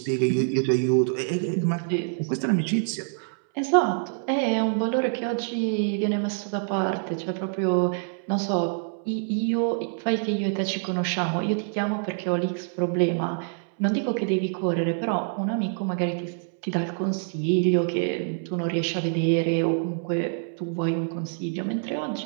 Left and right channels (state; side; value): silent; left; 61 dB below the other